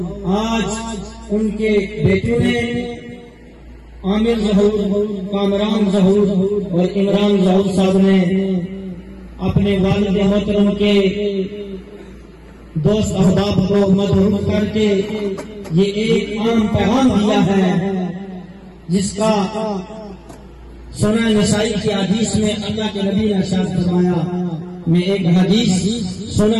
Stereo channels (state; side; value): identical; both; correlation 1.00